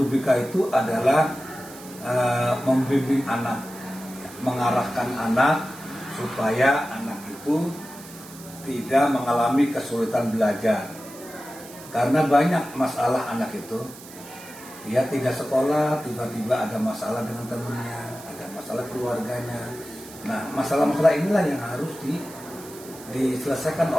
BK itu adalah membimbing anak, mengarahkan anak supaya anak itu tidak mengalami kesulitan belajar. Karena banyak masalah anak itu, dia tidak sekolah, tiba-tiba ada masalah dengan temannya, ada masalah keluarganya. Nah, masalah-masalah inilah yang harus diselesaikan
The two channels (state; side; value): noise; right; hiss, 17 dB below the sound